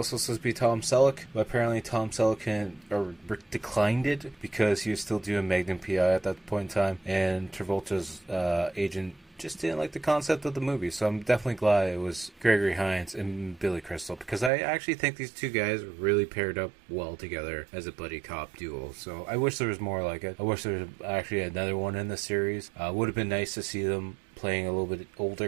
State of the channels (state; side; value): drops out; left; at 14.5 s